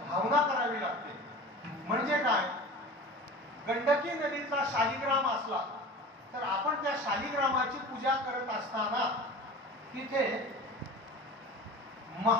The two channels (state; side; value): normal; both; correlation 0.36